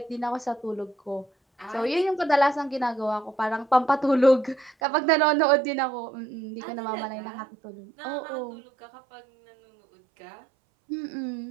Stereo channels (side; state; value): left; drops out; at 4.8 s